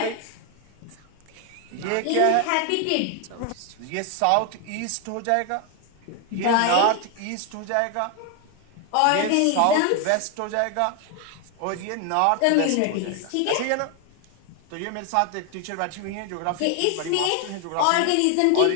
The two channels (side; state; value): both; different; correlation 0.01